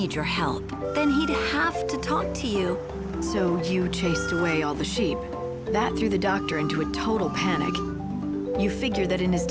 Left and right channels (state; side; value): identical; both; correlation 1.00